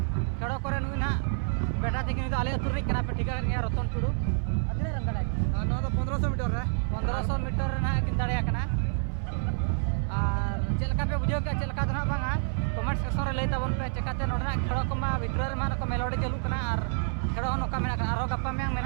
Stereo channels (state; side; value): silent; left; 55 dB below the other